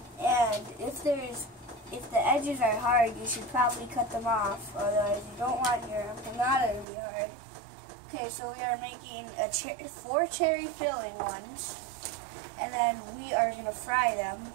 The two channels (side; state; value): left; drops out; at 6.9 s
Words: And if the edges are hard, you should probably cut them off, otherwise you don't want your empanada to be hard. Okay, so we are making 4 cherry filling ones, and then we are going to fry them.